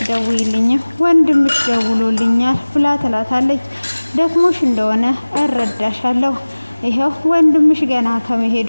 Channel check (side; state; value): both; inverted; correlation -1.00